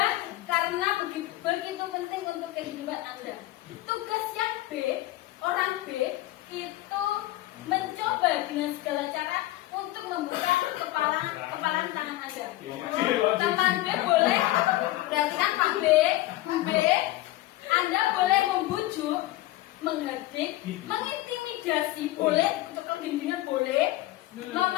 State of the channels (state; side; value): quieter; right; 16.6 dB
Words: karena begitu penting untuk kehidupan Anda. Tugasnya B, orang B itu mencoba dengan segala cara untuk membuka kepalan tangan Anda. Teman